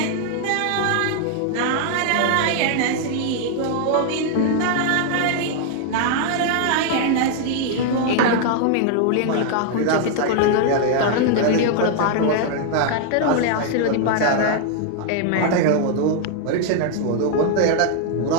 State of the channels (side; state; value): both; different; correlation 0.00